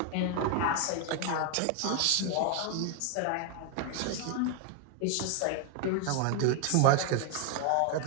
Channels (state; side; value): different; both; correlation 0.00